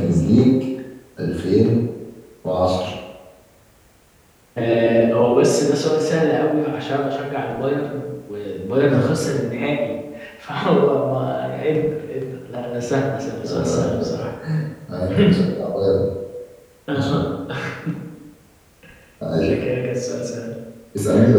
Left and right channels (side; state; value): both; identical; correlation 1.00